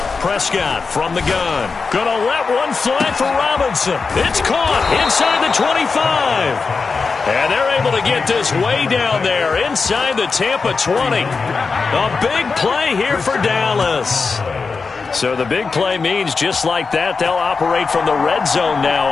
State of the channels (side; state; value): right; quieter; 4.7 dB